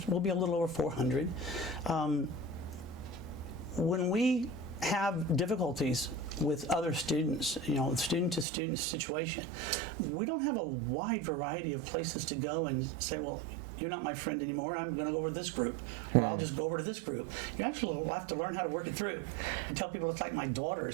will be a little over 400. When we have difficulties with other students, student-to-student situation, we don't have a wide variety of places to go and say, well, you're not my friend anymore, I'm going to go over to this group, or I'll just go over to this group. You actually have to learn how to work it through. I tell people it's like my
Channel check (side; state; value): left; drops out; at 8.5 s